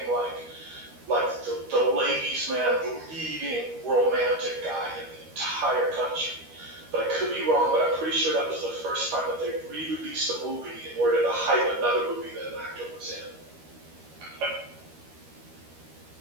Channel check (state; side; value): late; left; 13 ms